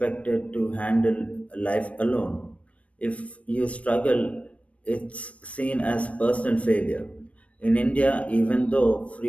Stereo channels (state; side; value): late; right; 0.064 ms